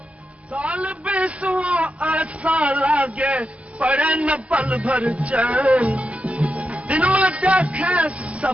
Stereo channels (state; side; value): late; left; 0.064 ms